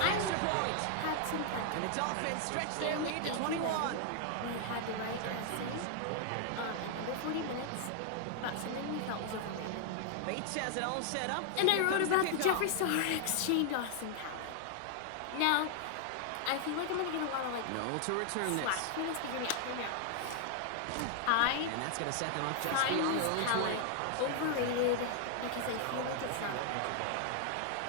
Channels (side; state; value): both; different; correlation 0.00